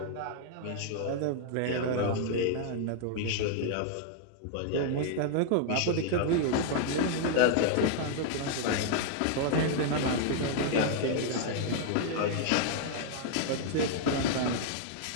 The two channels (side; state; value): both; different; correlation 0.00